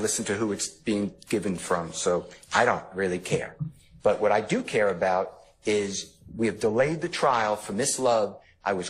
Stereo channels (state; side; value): identical; both; correlation 1.00